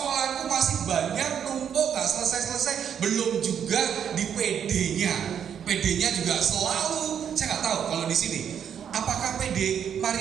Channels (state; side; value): quieter; left; 8.4 dB